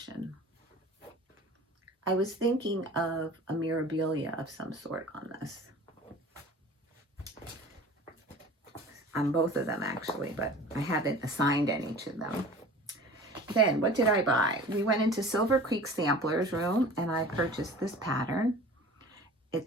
And I was thinking of a mirabilia of some sort on this. On both of them, actually, but I haven't assigned any to them. Then, what did I buy? We went into Silver Creek Sampler's room, and I purchased this pattern.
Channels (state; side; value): normal; both; correlation 0.42